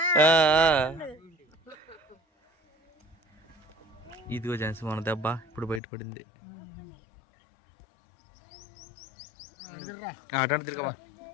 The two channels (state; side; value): drops out; right; at 5.8 s